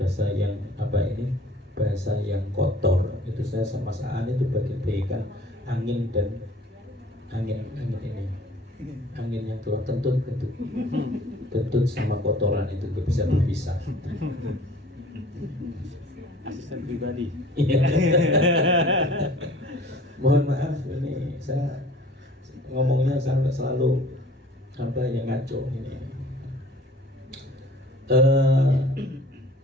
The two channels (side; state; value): both; normal; correlation 0.50